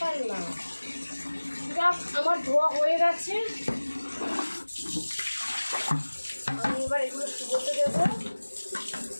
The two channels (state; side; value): inverted; both; correlation -1.00